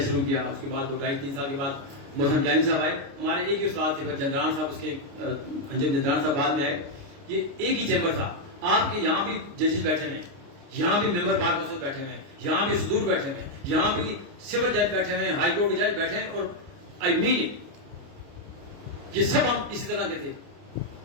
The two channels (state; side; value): late; left; 29 ms